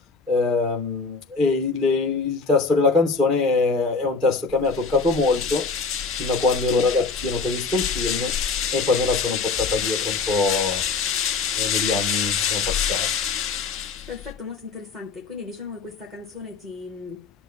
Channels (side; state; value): right; quieter; 4.4 dB